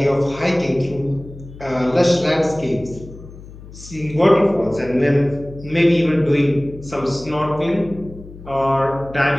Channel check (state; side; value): noise; left; hum, 17 dB below the sound